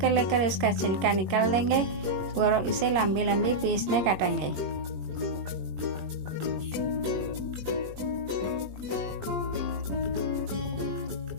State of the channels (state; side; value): late; left; 21 ms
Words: लेकर इसका छिलका निकाल देंगे और इसे लंबी लंबी पीस में काटेंगे।